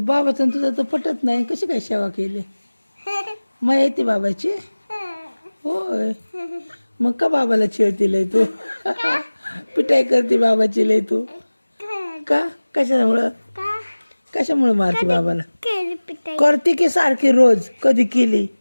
बाबाचं आणि तुझं तर पटत नाही. कशी काय सेवा केली? मग येते बाबाची. होय, मग का बाबाला छेडती लय तू? पिटाई करते बाबाची लय तू का? कशामुळं? का कशामुळे मारते बाबाला? केली पिटाई. करते की सारखी रोज? कधी केली?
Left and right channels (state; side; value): inverted; both; correlation -1.00